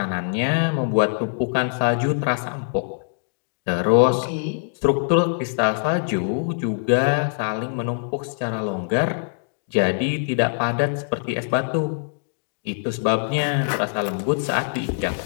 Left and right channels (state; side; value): silent; right; digital silence